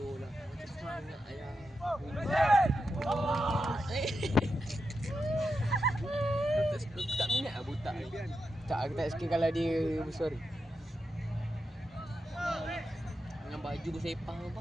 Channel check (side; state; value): both; normal; correlation 0.87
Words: Macam sangat ayah. Aku tak minat lah butak ni. Tak, aku tak suka kalau dia bersuara. Dengan baju bersepah kau